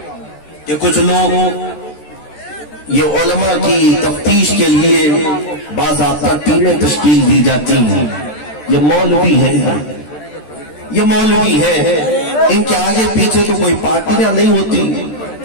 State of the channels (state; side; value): late; right; 13 ms